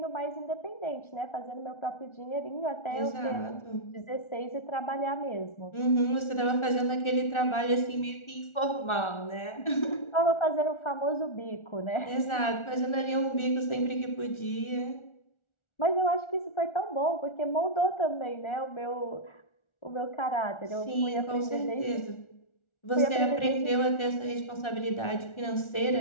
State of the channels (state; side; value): late; right; 1.4 ms